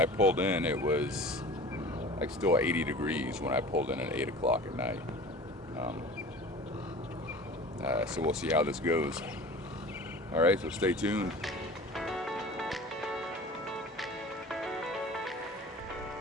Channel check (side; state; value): both; normal; correlation 0.40